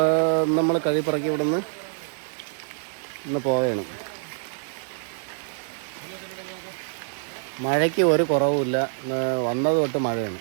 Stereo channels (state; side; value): silent; left; 61 dB below the other